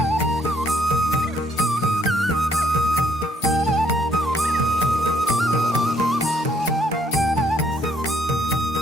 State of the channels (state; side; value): normal; both; correlation 0.67